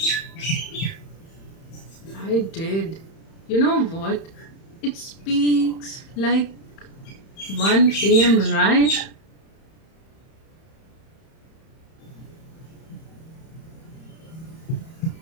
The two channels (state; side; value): late; right; 31 ms